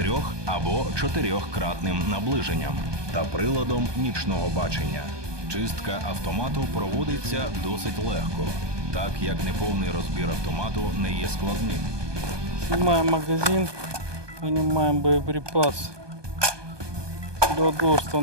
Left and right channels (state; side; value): late; left; 1.2 ms